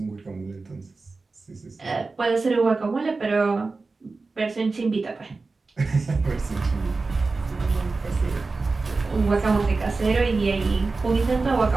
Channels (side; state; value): left; quieter; 3.8 dB